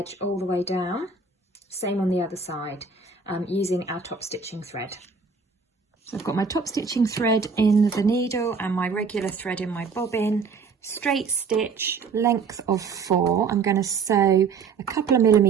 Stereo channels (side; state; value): left; quieter; 5.1 dB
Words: all the way down, same on the other side, using our top stitching thread. So I've got my top stitching thread in the needle and my regular thread in my bobbin. Straight stitch, length of 4. I'm going to sew a couple of